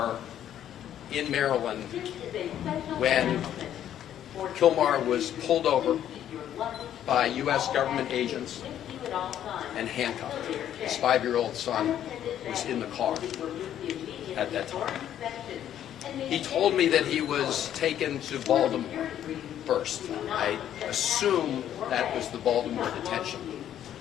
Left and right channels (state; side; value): quieter; right; 10.8 dB